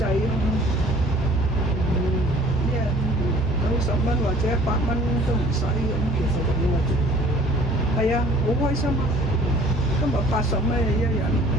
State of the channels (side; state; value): both; normal; correlation 0.52